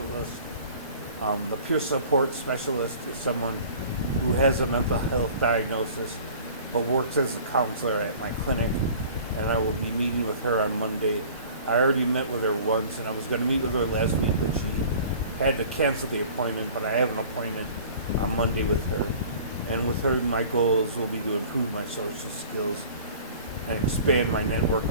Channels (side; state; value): both; inverted; correlation -0.46